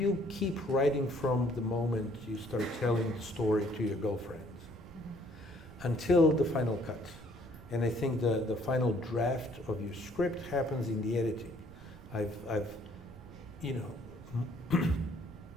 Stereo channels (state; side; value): noise; right; rumble, 18 dB below the sound